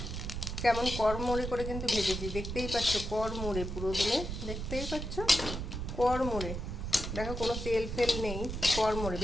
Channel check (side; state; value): right; noise; rumble, 5 dB below the sound